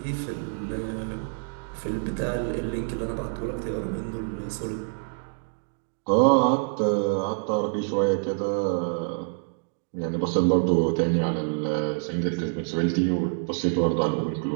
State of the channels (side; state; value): left; silent; digital silence